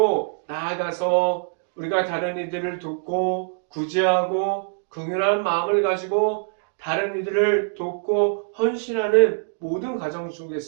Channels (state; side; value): silent; left; digital silence